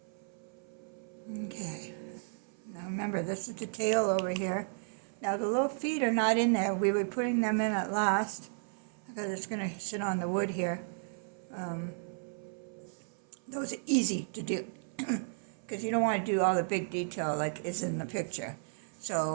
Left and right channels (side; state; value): left; silent; 55 dB below the other